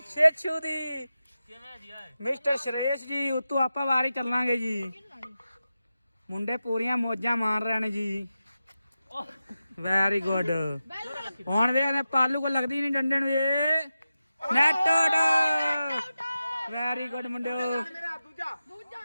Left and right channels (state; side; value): inverted; both; correlation -0.92